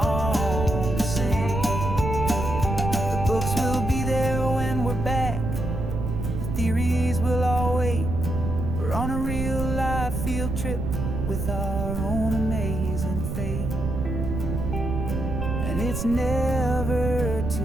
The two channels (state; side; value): noise; right; rumble, 3 dB below the sound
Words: to sing. The books will be there when we're back, the theories will all wait. We're on a real life field trip with our own amazing fate, and it's never